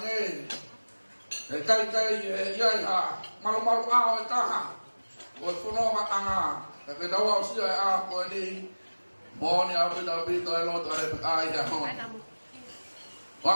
E kai e iai ha. Malu ao e taha. Koe whunonga anga. E pe tau au sia e a koe ni. Moni au pita pito e loto are pe ai hea hon.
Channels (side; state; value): both; inverted; correlation -1.00